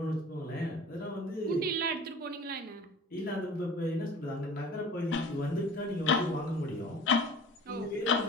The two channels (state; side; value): normal; both; correlation 0.42